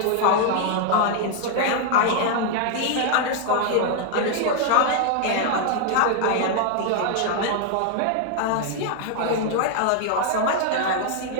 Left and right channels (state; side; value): different; both; correlation 0.00